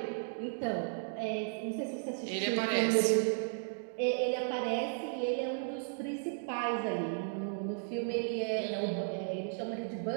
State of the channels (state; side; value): silent; left; digital silence